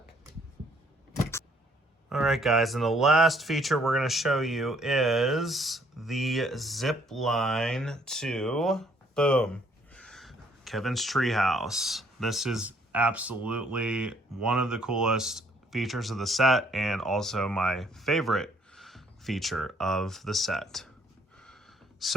All right, guys, and the last feature we're going to show you is the zip line to, boom, Kevin's treehouse. This is absolutely one of the coolest features of the set and also my favorite feature of the set.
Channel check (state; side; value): normal; both; correlation 0.64